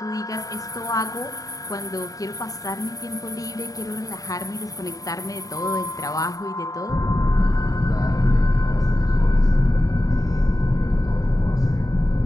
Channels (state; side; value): late; right; 0.17 ms